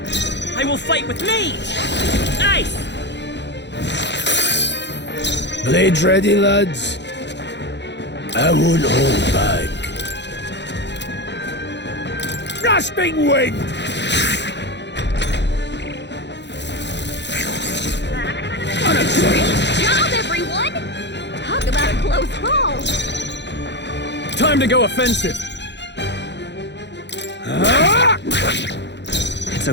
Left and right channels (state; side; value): late; right; 0.51 ms